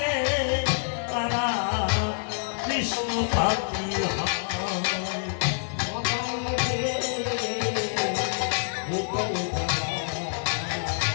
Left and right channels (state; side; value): silent; right; 60 dB below the other